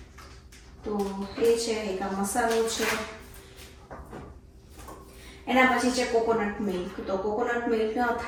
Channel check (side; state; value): both; identical; correlation 1.00